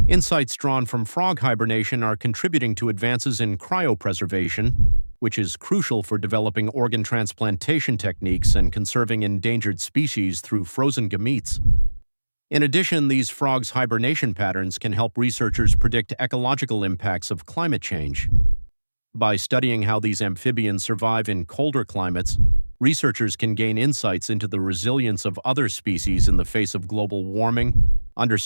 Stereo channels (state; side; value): inverted; both; correlation -1.00